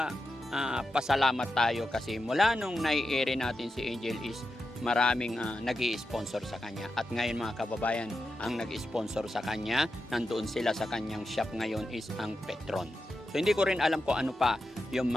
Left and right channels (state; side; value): normal; both; correlation 0.89